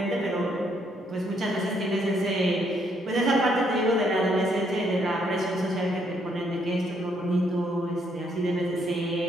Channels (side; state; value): both; normal; correlation 0.71